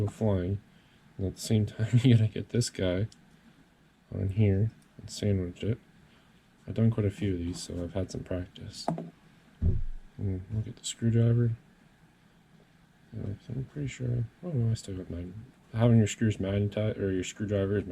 flying. And at the same time you gotta get this guy on here and sandwich it. I've done quite a few of these, so I've had some practice. And look at the screwdriver. I'm pretty sure. Oh no, I still got mine. Having your screws magnetized or your screwdriver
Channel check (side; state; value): both; identical; correlation 1.00